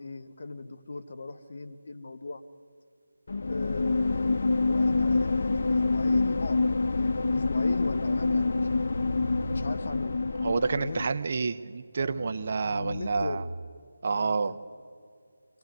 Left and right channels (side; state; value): both; inverted; correlation -0.92